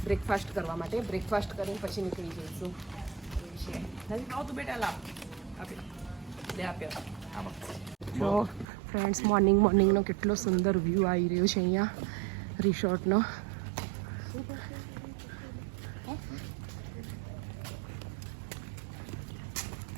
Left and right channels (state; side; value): drops out; left; at 8.7 s